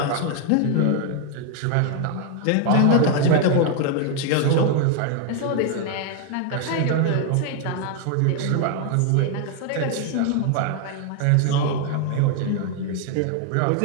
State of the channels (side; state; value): both; different; correlation 0.00